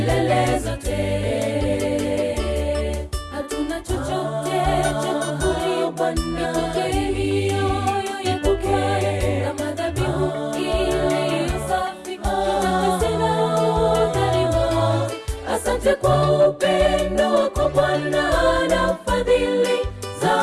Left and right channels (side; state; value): both; identical; correlation 1.00